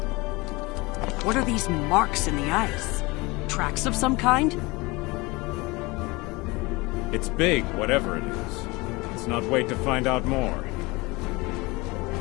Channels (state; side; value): quieter; right; 24.0 dB